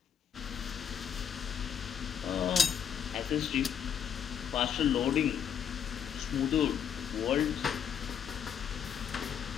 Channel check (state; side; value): quieter; right; 8.3 dB